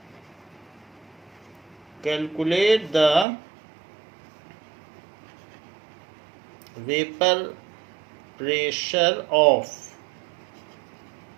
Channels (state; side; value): drops out; left; at 3.2 s